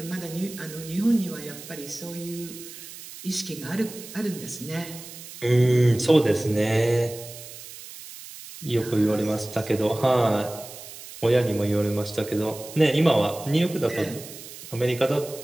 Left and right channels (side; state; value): right; noise; hiss, 14 dB below the sound